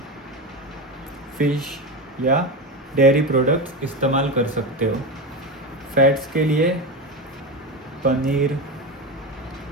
फिश या डेयरी प्रोडक्ट्स इस्तेमाल कर सकते हो। फैट्स के लिए पनीर,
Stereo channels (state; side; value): normal; both; correlation 0.19